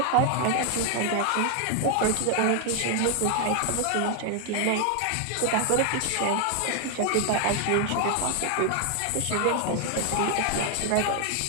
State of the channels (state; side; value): different; both; correlation 0.00